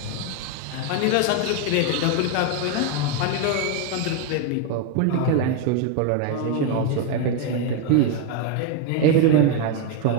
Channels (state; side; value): different; both; correlation 0.02